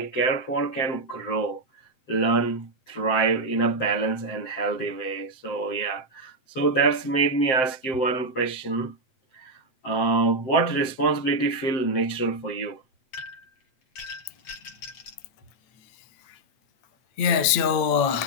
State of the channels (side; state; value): right; late; 8.8 ms